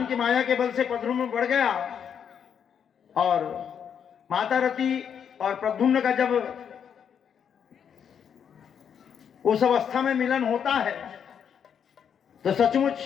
की माया के बल से प्रद्युम्न बढ़ गया और माता रति और प्रद्युम्न का जब उस अवस्था में मिलन होता है तो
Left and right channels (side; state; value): right; quieter; 7.9 dB